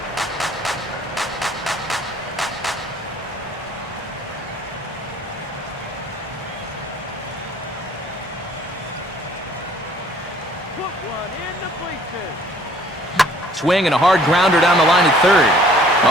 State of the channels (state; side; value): normal; both; correlation 0.56